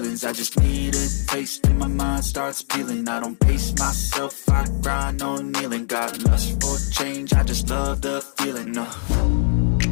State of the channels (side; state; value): right; silent; digital silence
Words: I just need a taste and my mind starts peeling. I don't pace myself, I grind on kneeling. Got lust for change, I just love the feeling.